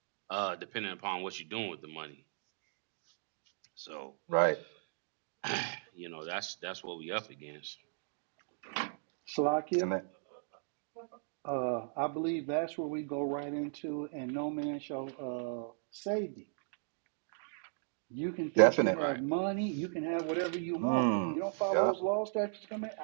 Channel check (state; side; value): silent; left; digital silence